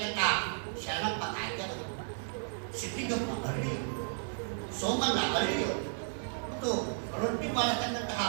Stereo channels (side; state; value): left; silent; 55 dB below the other